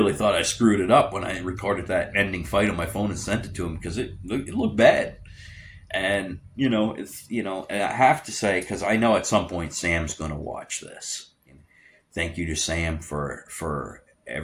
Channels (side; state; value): both; identical; correlation 1.00